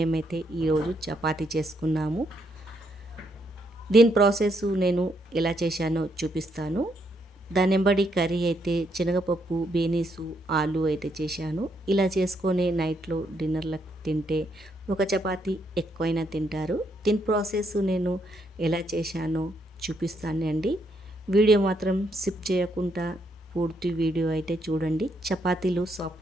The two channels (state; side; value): normal; both; correlation 0.75